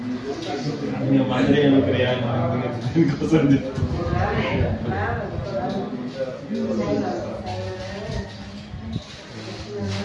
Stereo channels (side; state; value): both; identical; correlation 1.00